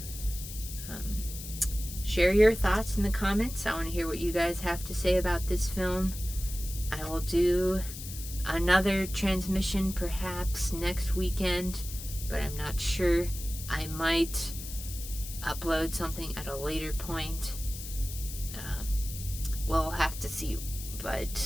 Share your thoughts in the comments. I want to hear what you guys have to say about this film. I will do another transmission perhaps next weekend, but I'm not sure. I might upload something at a later point. We'll have to see,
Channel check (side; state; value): left; noise; hiss, 11 dB below the sound